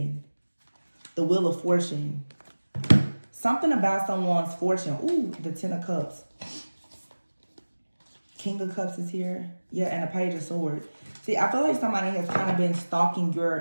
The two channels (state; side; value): inverted; both; correlation -1.00